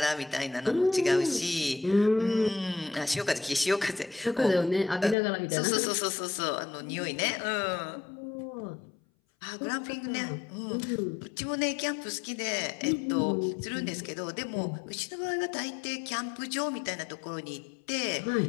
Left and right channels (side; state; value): right; drops out; at 5.2 s